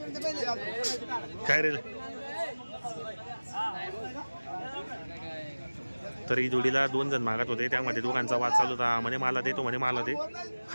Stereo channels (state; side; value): inverted; both; correlation -1.00